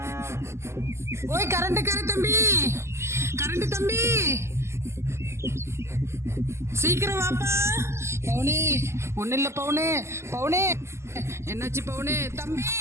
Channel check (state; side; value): late; left; 0.13 ms